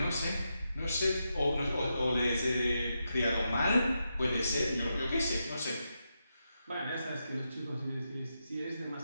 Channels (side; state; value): both; inverted; correlation -0.85